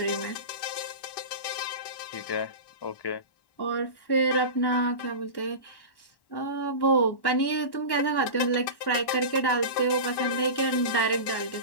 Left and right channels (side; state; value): right; late; 1.1 ms